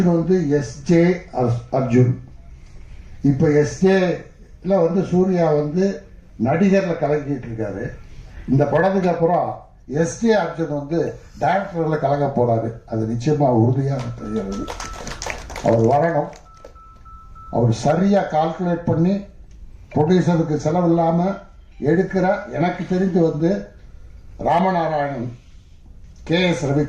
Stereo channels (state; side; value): identical; both; correlation 1.00